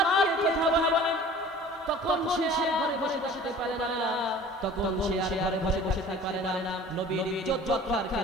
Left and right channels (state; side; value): normal; both; correlation 0.45